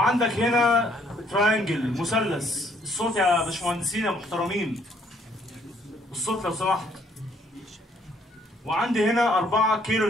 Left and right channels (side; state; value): both; normal; correlation 0.66